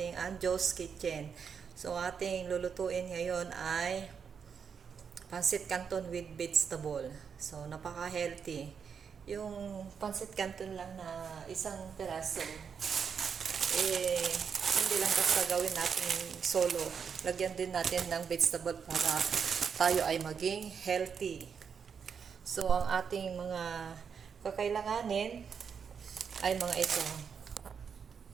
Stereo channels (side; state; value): left; quieter; 6.7 dB